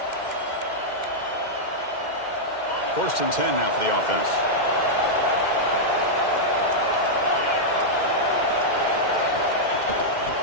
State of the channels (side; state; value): right; late; 2.1 ms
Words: First and 10 now for the offense.